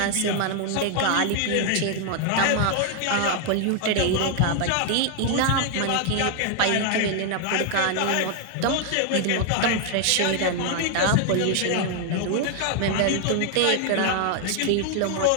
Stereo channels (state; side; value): different; both; correlation 0.00